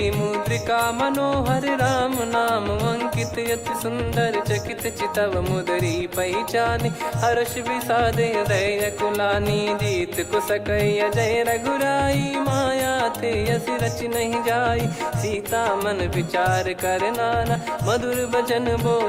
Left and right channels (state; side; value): identical; both; correlation 1.00